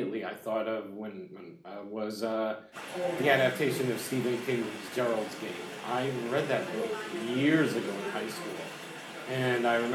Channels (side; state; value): both; identical; correlation 1.00